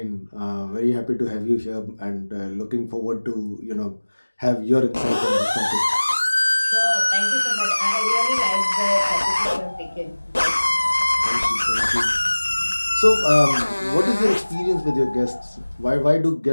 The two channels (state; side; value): inverted; both; correlation -1.00